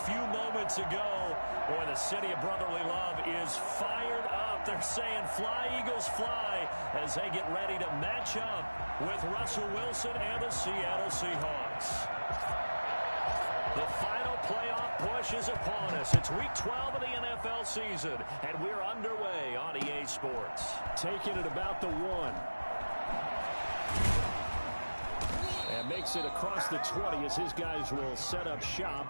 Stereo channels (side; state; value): both; inverted; correlation -1.00